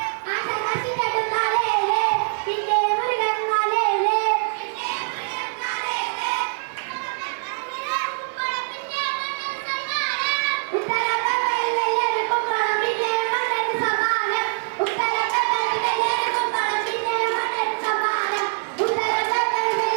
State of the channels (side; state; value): left; silent; digital silence